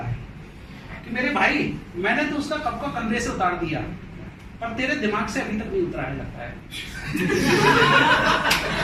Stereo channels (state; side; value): identical; both; correlation 1.00